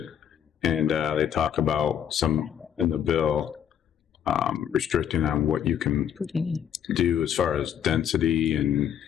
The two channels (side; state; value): right; quieter; 9.2 dB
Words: And they talk about some in the bill restricting on what you can do as far as density and